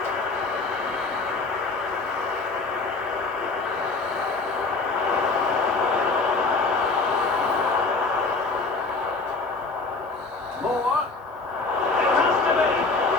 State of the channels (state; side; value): quieter; right; 3.9 dB